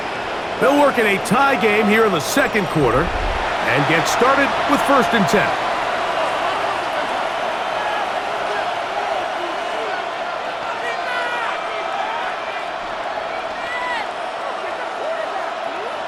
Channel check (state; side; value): identical; both; correlation 1.00